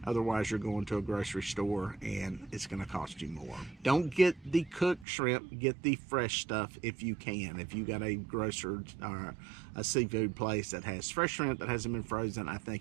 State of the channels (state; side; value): drops out; left; at 5.1 s